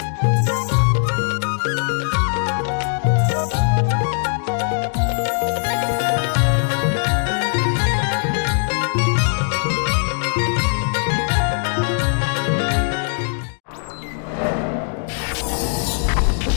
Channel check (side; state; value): right; silent; 58 dB below the other